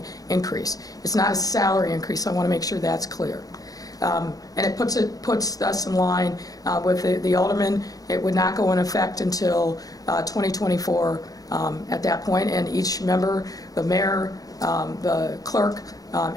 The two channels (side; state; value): right; late; 0.18 ms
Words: increase. It's not a salary increase, so I want to make sure that's clear. And it puts us in line with the aldermen. It would not go in effect until 2024 at that point, and each member, the mayor, the clerk,